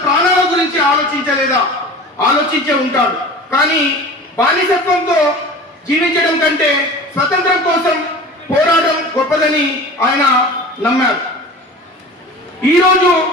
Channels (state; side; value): normal; both; correlation 0.37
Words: ప్రాణాల గురించి ఆలోచించలేదా? ఆలోచించే ఉంటాడు. కానీ బానిసత్వంతో జీవించడం కంటే స్వతంత్రం కోసం పోరాటం గొప్పదని ఆయన నమ్మారు. ఈరోజు